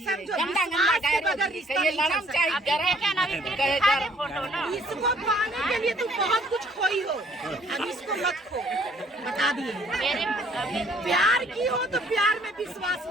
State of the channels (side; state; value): both; normal; correlation 0.61